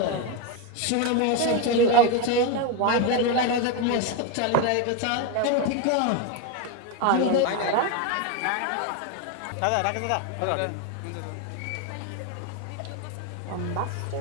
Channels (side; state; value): both; different; correlation 0.02